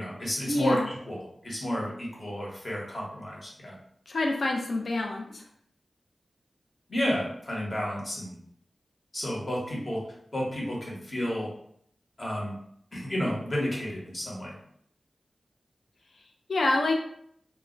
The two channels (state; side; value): normal; both; correlation 0.94